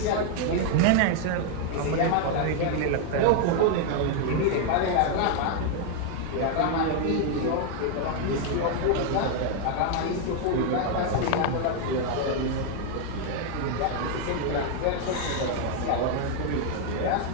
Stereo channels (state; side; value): different; both; correlation 0.00